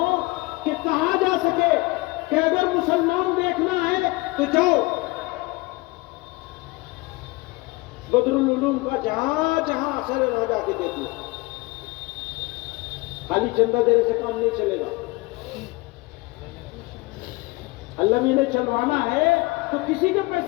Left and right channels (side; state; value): right; quieter; 23.3 dB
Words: کہ کہا جا سکے کہ اگر مسلمان دیکھنا ہے تو جاؤ بدر العلوم کا جہاں جہاں اثر ہے وہاں جا کے دیکھ لو. خالی چندہ دینے سے کام نہیں چلے گا. اللہ نے انہیں چلوانا ہے تو کسی کے